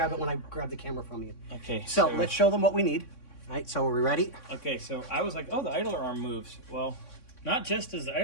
it when I grab the camera from you. Okay. So let's show them what we need. All right, so are we ready? Okay, so I was like, oh, the idler arm moves. Well, not just does the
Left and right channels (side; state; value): right; late; 3.6 ms